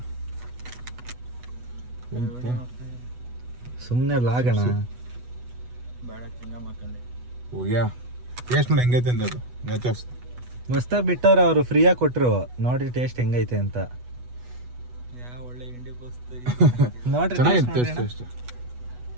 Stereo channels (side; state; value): left; late; 8.1 ms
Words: ಸುಮ್ಮನೆ ಲಾಗಣ. ಹೋಗ್ಯಾ ಟೇಸ್ಟ್ ನೋಡಿ ಹೆಂಗೈತೆ ಅಂತ. ಅದು ನ್ಯಾಚೋಸ್ ಮಸ್ತಾಗಿ ಬಿಟ್ಟವ್ರೆ ಅವರು, ಫ್ರೀಯಾಗಿ ಕೊಟ್ಟರು. ನೋಡಿ ಟೇಸ್ಟ್ ಹೆಂಗೈತೆ ಅಂತ. ನೋಡ್ರಿ ಚೆನ್ನಾಗಿತ್ತು ಟೇಸ್ಟ್.